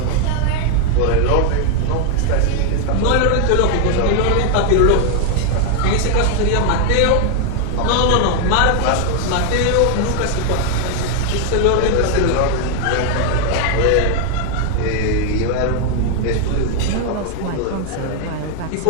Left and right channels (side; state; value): both; different; correlation 0.00